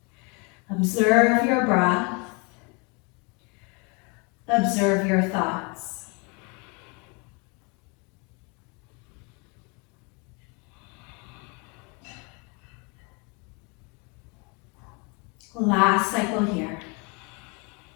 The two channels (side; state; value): right; quieter; 31.7 dB